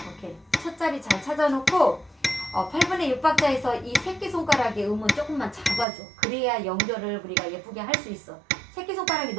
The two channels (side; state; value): left; drops out; at 5.9 s